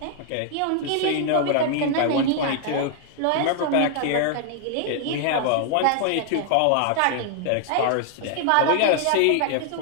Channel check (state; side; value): different; both; correlation 0.00